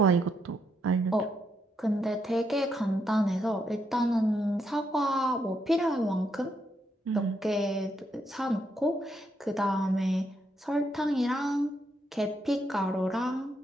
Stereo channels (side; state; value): both; normal; correlation 0.78